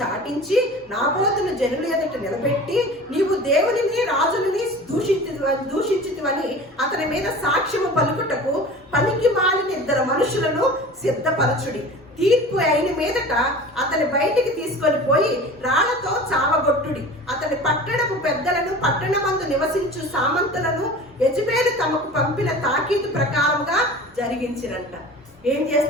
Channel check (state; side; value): normal; both; correlation 0.38